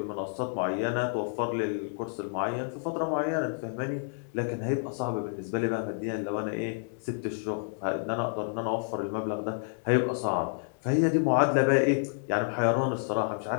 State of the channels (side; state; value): right; silent; digital silence